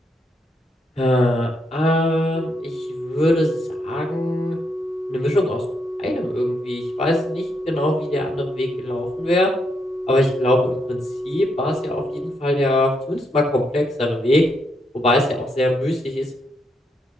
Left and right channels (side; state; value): both; normal; correlation 0.78